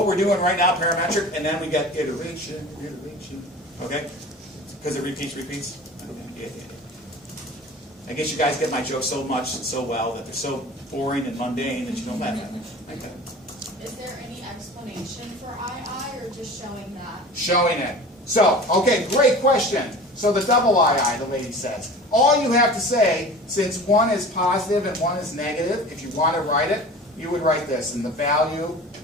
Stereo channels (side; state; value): both; normal; correlation 0.39